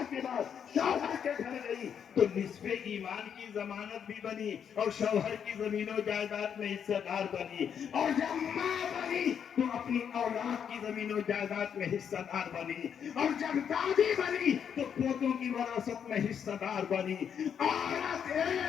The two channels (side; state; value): right; quieter; 7.9 dB